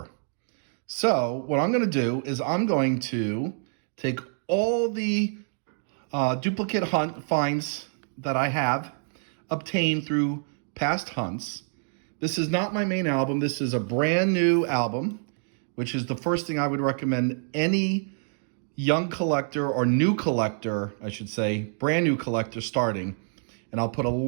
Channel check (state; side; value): silent; left; digital silence